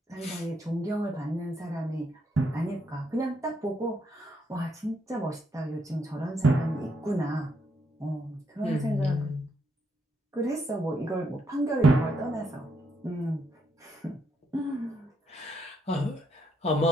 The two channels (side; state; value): both; normal; correlation 0.76